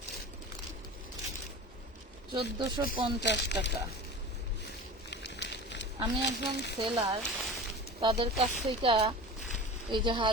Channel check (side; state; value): both; normal; correlation 0.34